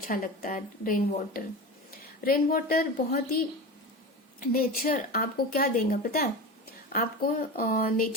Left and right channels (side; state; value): both; normal; correlation 0.27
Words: लगता है रेन वाटर। रेन वाटर बहुत ही, नेचर आपको क्या देगा पता है? आपको